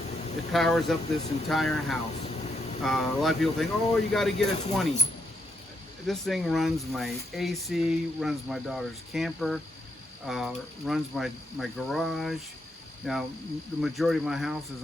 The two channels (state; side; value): normal; both; correlation 0.79